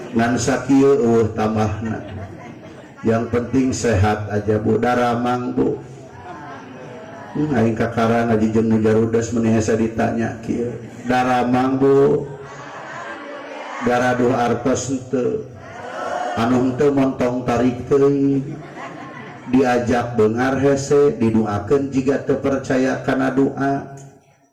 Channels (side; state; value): both; identical; correlation 1.00